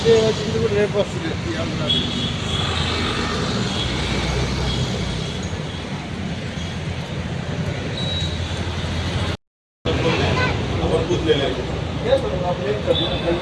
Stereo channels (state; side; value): identical; both; correlation 1.00